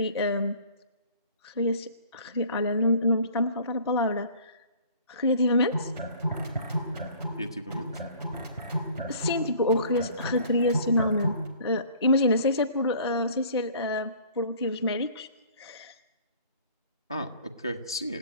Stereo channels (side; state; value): both; inverted; correlation -0.51